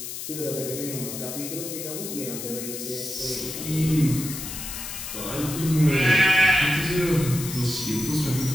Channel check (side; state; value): left; noise; hiss, 7 dB below the sound